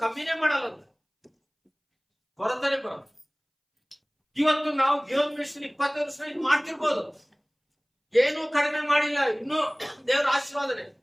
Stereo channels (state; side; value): identical; both; correlation 1.00